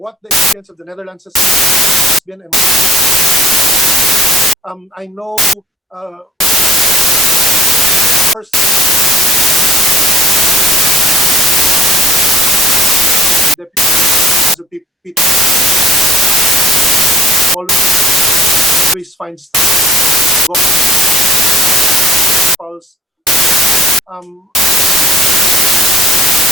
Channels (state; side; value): normal; both; correlation 0.58